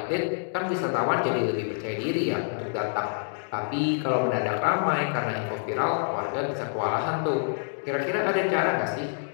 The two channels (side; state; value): right; silent; digital silence